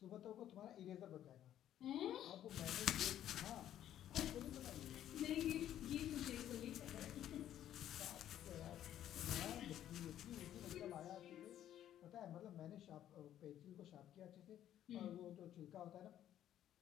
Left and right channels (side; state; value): right; quieter; 11.5 dB